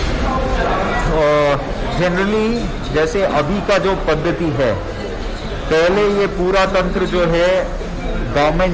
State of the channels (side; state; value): both; identical; correlation 1.00